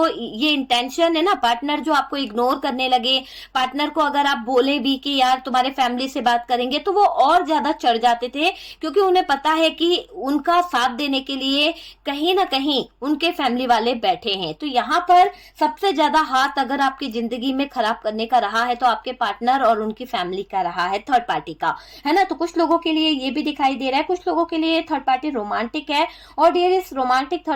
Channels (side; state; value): both; identical; correlation 1.00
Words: ये इंटेंशन है ना, पार्टनर जो आपको इग्नोर करने लगे, पार्टनर को अगर आप बोले भी कि यार तुम्हारे फैमिली से बात करेंगे तो वो और ज्यादा चढ़ जाते थे, क्योंकि उन्हें पता है कि उनका साथ देने के लिए कहीं ना कहीं उनके फैमिली वाले बैठे हैं। तो यहाँ पर सबसे ज्यादा हाथ अगर आपकी जिंदगी में खराब करने का रहा है तो आपके पार्टनर और उनकी फैमिली का रहा है, थर्ड पार्टी का, है ना। तो कुछ लोगों के लिए ये भी दिखाई दे रहा है, कुछ लोगों के लिए थर्ड पार्टी रोमांटिक है। और डियर इस रोमांटिक